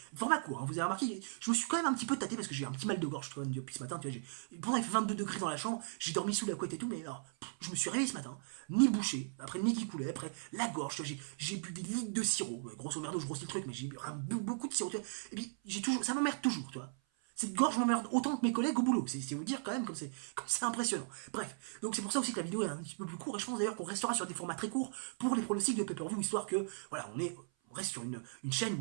format court, hein, vous avez remarqué, je me suis quand même un petit peu tâté parce que j'ai un petit mal de gorge depuis ce matin, tu vois, pourtant il fait 22 degrés dans la chambre, j'ai dormi sous la couette et tout, mais alors, je me suis réveillé ce matin, ni bouché, après le nez qui coulait, après la gorge, tu vois, j'ai bu des litres de sirop, grosso merdo, je grossis le truc, mais j'ai bu beaucoup de sirop, tu vois, et puis ça m'emmerde toujours, tu vois. Cette gorge m'emmerde autant que mes collègues au boulot. C'est vous dire quand même comme c'est impressionnant. Bref, donc c'est pour ça aussi que la vidéo est un petit peu plus courte. Et je pense d'ailleurs qu'on restera sur des formats très courts pour les pronostics de pay-per-view, histoire que, voilà, on reste sur une chaîne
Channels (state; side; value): silent; left; 53 dB below the other